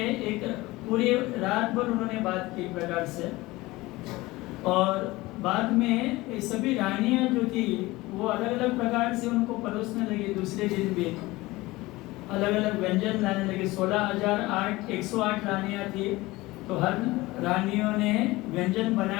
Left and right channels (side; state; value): right; quieter; 20.1 dB